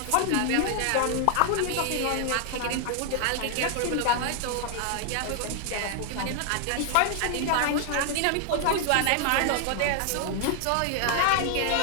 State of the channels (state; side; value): different; both; correlation 0.00